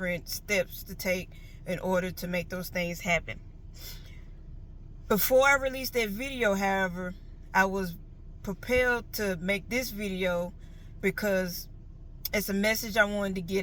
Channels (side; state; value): both; identical; correlation 1.00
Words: steps to take in order to make those things happen. Before I released that video, however, I was propelled to make this video because it's a message I wanted to get